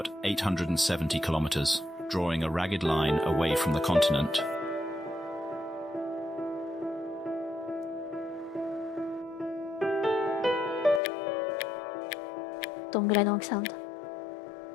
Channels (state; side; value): drops out; right; at 11.0 s